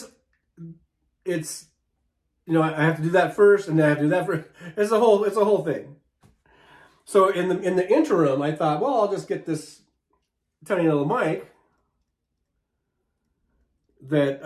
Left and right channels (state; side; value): identical; both; correlation 1.00